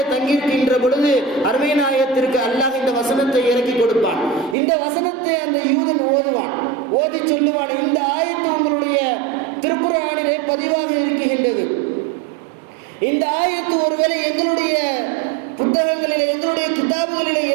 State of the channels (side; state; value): left; drops out; at 4.5 s